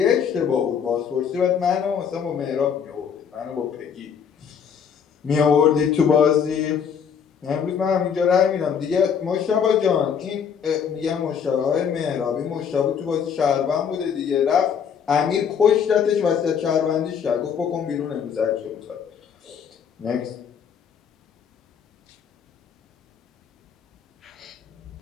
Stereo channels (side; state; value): right; quieter; 7.3 dB